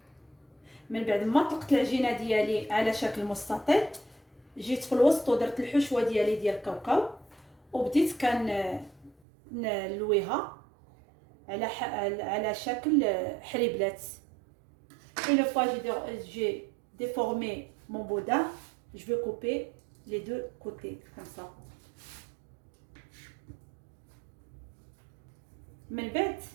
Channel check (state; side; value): drops out; left; at 9.2 s